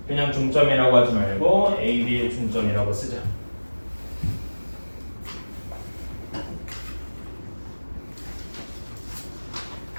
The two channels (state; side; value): inverted; both; correlation -1.00